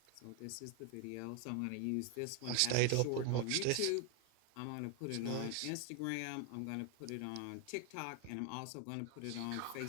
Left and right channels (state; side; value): different; both; correlation 0.01